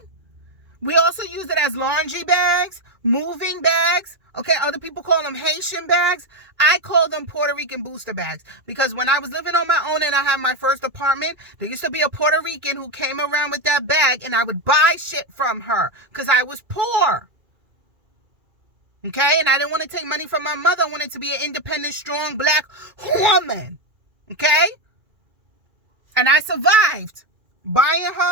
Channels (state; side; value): late; left; 2.4 ms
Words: We also use it as laundry bags, moving bags. Okay, other people call them Haitian bags. I call them Puerto Rican booster bags because when I was living on my own and I had my first apartment, there used to be a Puerto Rican who came around with that bag and I would buy shit from her because I was poor. Okay, and I didn't want to take money from my mother. I wanted to be an independent, strong black woman. Okay? And I survived buying